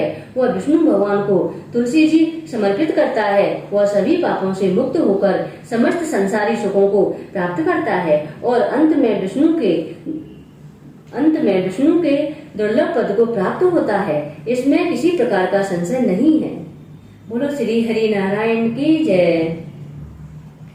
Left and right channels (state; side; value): identical; both; correlation 1.00